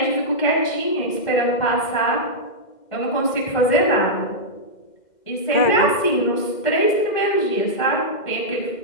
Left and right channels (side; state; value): right; late; 2.1 ms